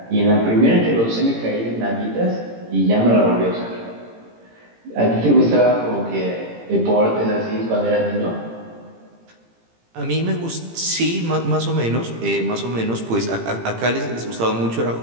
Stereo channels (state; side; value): late; left; 18 ms